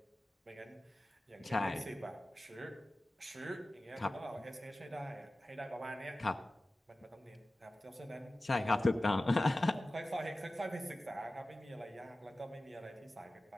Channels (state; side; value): normal; both; correlation 0.96